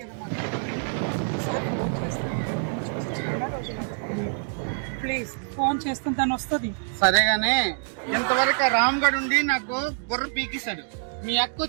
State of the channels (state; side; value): silent; left; 61 dB below the other